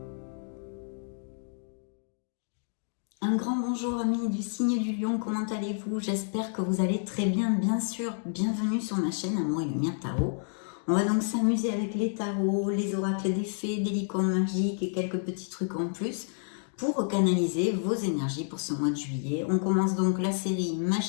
grand bonjour amis du signe du lion, comment allez-vous? J'espère que vous allez très bien, bien sûr. Bienvenue sur ma chaîne Amour et Lumière Tarot. On va donc s'amuser avec les tarots, les oracles des fées, des licornes magiques et quelques petits trucs en plus pour canaliser vos énergies pour ce mois de juillet. On commence donc la série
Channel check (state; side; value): silent; right; digital silence